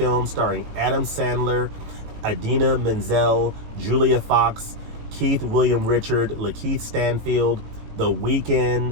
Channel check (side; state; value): left; late; 18 ms